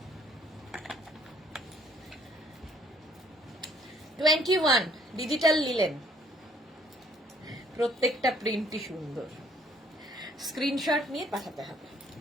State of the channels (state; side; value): normal; both; correlation 0.63